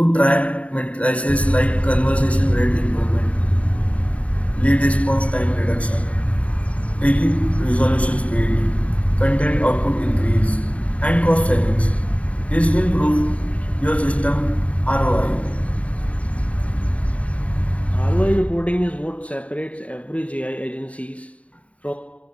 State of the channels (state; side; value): late; right; 0.066 ms